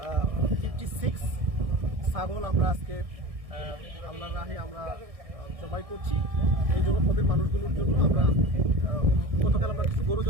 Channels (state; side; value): late; left; 1.6 ms